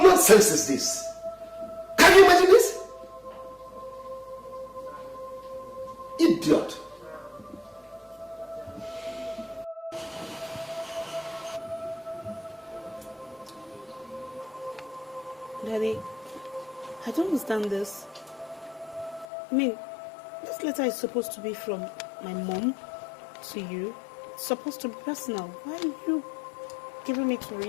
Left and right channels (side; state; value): right; drops out; at 19.2 s